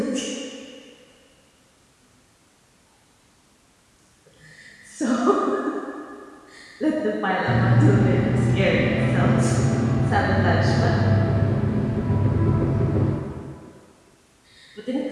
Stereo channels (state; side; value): identical; both; correlation 1.00